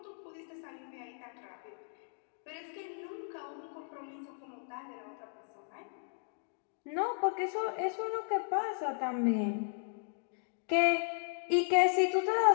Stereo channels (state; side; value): silent; right; digital silence